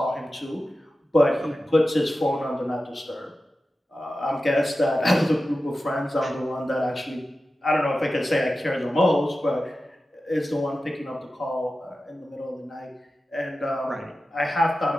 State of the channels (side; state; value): both; normal; correlation 0.93